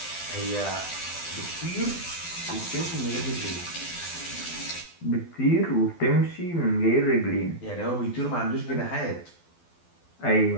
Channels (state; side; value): late; right; 12 ms